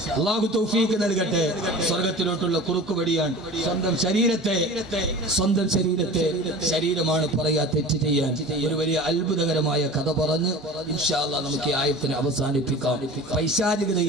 അല്ലാഹു തൗഫീഖ് നൽകട്ടെ. സ്വർഗത്തിലോട്ടുള്ള കുറുക്കുവടിയാണ് സ്വന്തം ശരീരത്തെ ശരീരമാണ് പറയാ തെറ്റ് ചെയ്യാൻ. ഒരു വലിയ അത്ഭുതകരമായ കഥ പറഞ്ഞ് ഇൻഷാ അല്ലാഹ് നമുക്ക് ഈ ആയത്തിനെ അവസാനിപ്പിക്കാം.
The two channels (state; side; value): normal; both; correlation 0.38